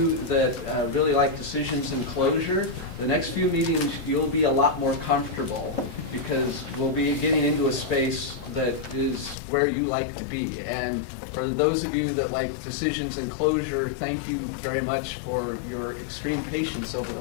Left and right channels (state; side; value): drops out; right; at 9.3 s